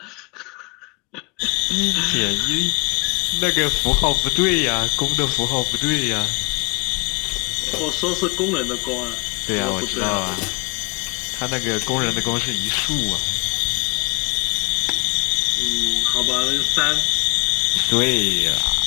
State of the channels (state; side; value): quieter; right; 32.0 dB